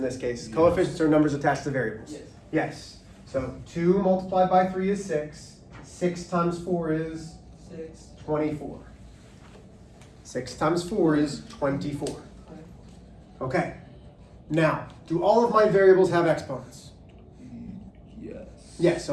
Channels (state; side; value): identical; both; correlation 1.00